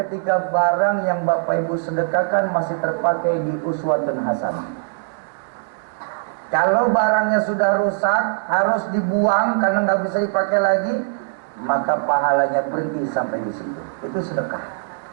barang yang Bapak Ibu sedekahkan masih terpakai di uswatun hasanah. Kalau barangnya sudah rusak, harus dibuang karena nggak bisa dipakai lagi, maka pahalanya berhenti sampai di situ. Itu sedekah.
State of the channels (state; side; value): silent; left; digital silence